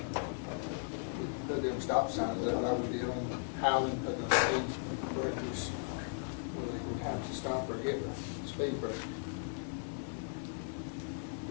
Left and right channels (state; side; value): silent; right; 53 dB below the other